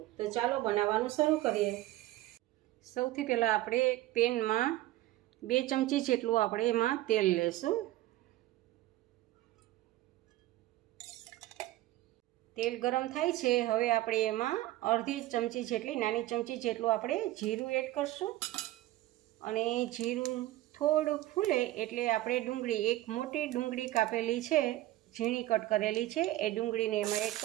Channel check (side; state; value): left; quieter; 16.2 dB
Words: તો ચાલો બનાવવાનું શરૂ કરીએ। સૌથી પહેલાં આપણે પેનમાં 2 ચમચી જેટલું આપણે એમાં તેલ લેશું। તેલ ગરમ થાય છે, હવે આપણે એમાં અડધી ચમચી જેટલી નાની ચમચી જેટલું આપણે જીરું એડ કરશું અને જીરું થોડું ફૂલે એટલે આપણે ડુંગળી, એક મોટી ડુંગળી કાપેલી છે, ઝીણી કટ કરેલી છે, એ ડુંગળીને એમાં એડ